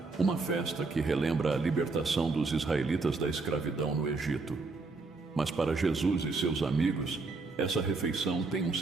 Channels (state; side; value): quieter; left; 3.8 dB